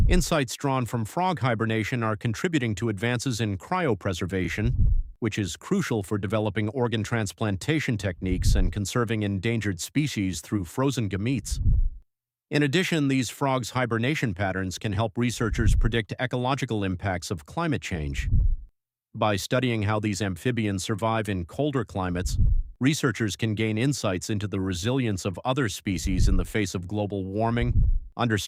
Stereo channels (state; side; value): identical; both; correlation 1.00